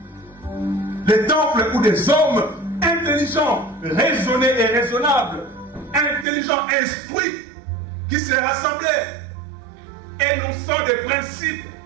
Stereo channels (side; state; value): left; drops out; at 6.2 s